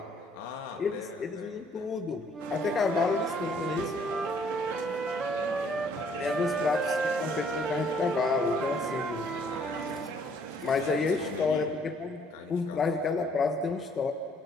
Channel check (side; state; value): both; normal; correlation 0.63